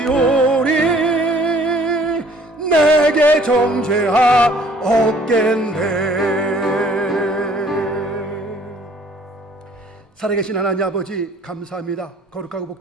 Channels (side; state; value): both; normal; correlation 0.57